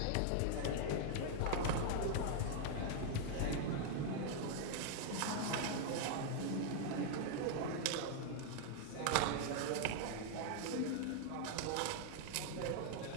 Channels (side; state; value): both; different; correlation 0.00